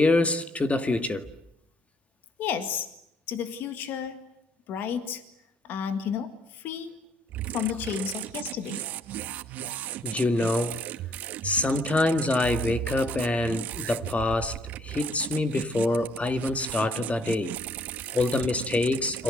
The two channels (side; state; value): both; normal; correlation 0.65